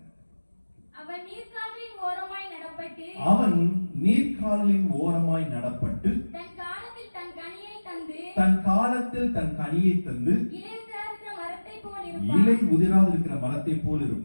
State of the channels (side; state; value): both; inverted; correlation -1.00